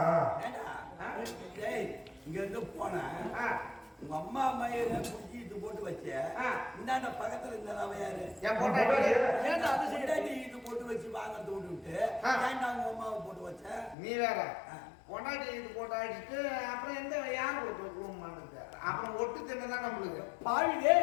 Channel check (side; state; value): right; drops out; at 14.0 s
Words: இங்க இருந்து போனேன். உங்க அம்மா மயில குடிச்சிட்டு போட்டு வச்ச இந்தாண்ட பக்கத்துல இருந்தா யாரு? என் பொண்டாட்டி ஏன்டா அது சைடாடி இது போட்டு வச்சு வாங்க தோண்டு விட்டு ஏன்டா உங்க அம்மாவை போட்டு வச்ச? நீ வேற பொண்டாட்டி இது போட்டு அடிச்சுட்டு அப்புறம் எந்த யார் போட்டு அப்புறம் ஒட்டு தின்னதான் நம்மளுக்கு பாவிலே